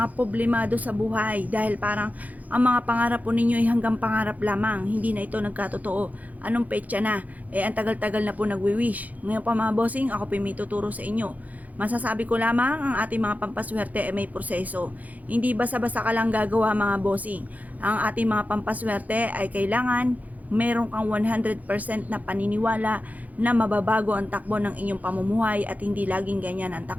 problemado sa buhay dahil parang ang mga pangarap po ninyo ay hanggang pangarap lamang, hindi na ito nagkatotoo. Anong petsa na? Ang tagal-tagal na po nagwi-wish. Ngayon pa mga bossing, ako po may tuturo sa inyo. Masasabi ko lamang ang ating mga pampaswerte ay may proseso. Hindi basta-basta ka lang gagawa mga bossing. Ang ating mga pampaswerte ay kailangan meron kang 100% na paniniwala na mababago ang takbo ng inyong pamumuhay at hindi laging ganyan ang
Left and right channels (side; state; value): left; late; 0.078 ms